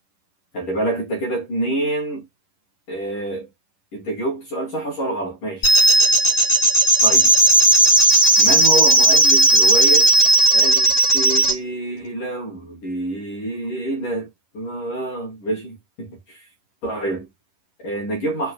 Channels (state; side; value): late; right; 10 ms